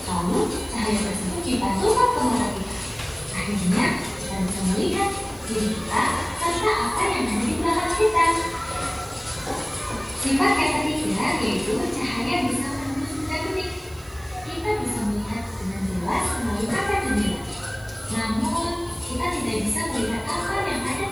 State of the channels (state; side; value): noise; right; hiss, 24 dB below the sound